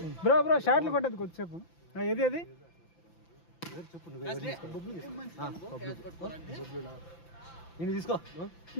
బ్రో షాట్లు కొట్టదు కొద్దిసేపు. ఏది చెప్పు. నేను తీసుకో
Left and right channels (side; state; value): right; late; 5.9 ms